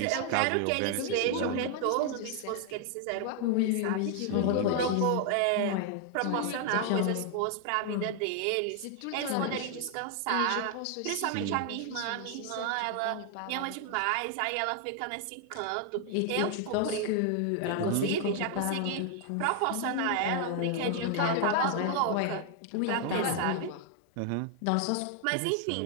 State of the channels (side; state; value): both; different; correlation 0.00